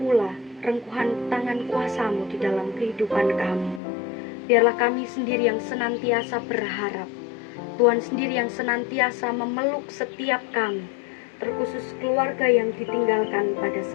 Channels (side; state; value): right; drops out; at 3.8 s